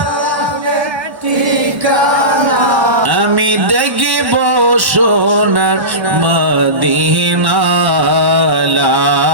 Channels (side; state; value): left; late; 1.1 ms